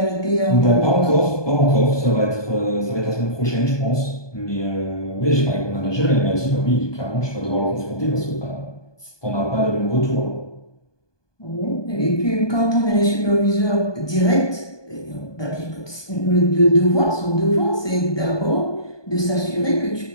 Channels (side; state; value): right; late; 1.2 ms